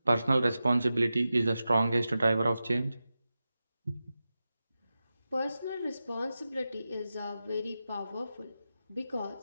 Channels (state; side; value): inverted; both; correlation -0.93